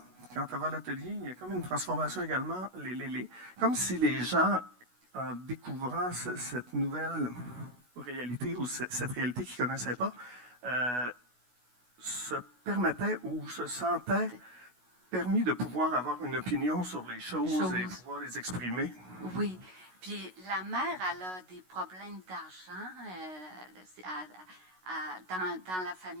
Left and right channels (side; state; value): left; late; 16 ms